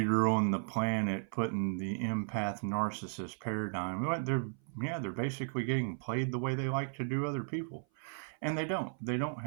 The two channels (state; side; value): silent; left; 54 dB below the other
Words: on the planet putting the empath narcissist paradigm, they're basically getting played the way they like to do other people. And they don't